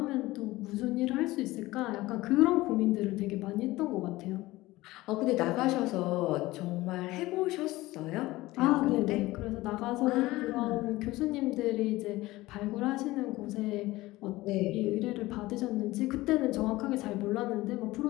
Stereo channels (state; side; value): quieter; right; 18.7 dB